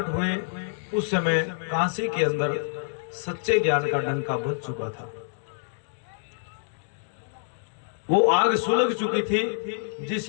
हुए, उस समय काशी के अंदर सच्चे ज्ञान का डंका बज चुका था। वो आग सुलग चुकी थी,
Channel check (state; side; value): silent; right; digital silence